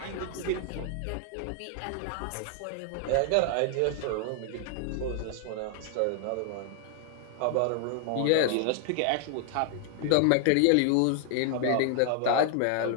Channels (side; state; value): both; different; correlation 0.00